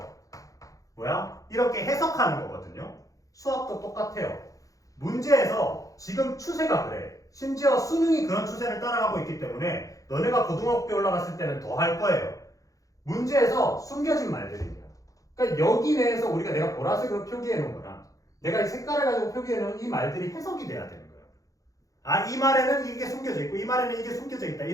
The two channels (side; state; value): right; late; 0.17 ms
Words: 뭐야? 이렇게 해석하는 거거든요. 수학도 똑같아요. 문제에서 지금 추세가 그래. 심지어 수능이 그런 추세를 따라가고 있기 때문에 너네가 고등학교에 올라갔을 때는 더 할 거예요. 문제에서 숨겨진 말들입니다. 그러니까 여기 내에서 우리가 내가 보라색으로 표기해 놓은 거랑 내가 이 색깔을 가지고 표기해 놓은 이 말들이 해석이 돼야 되는 거예요. 아, 이 말에는 이게 숨겨져 있고 이 말에는 이게 숨겨져 있다